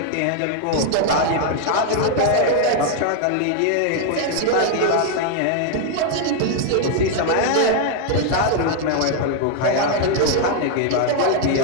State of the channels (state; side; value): different; both; correlation 0.00